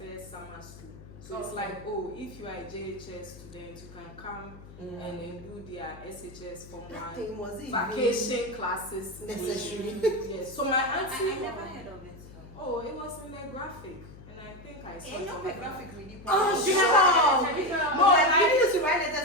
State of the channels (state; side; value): noise; left; hum, 17 dB below the sound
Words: summer school. So it's Okay. like, oh, if you are a JHS student, you can come and then do their SHS Form That 1 thing was it vacation classes. necessary. Yes. So my auntie. I never heard of it. Oh, it was in the graphic, and I think I saw You it know on the the graphic really. Oh, Traditional. sure. No, Like, I- you used to write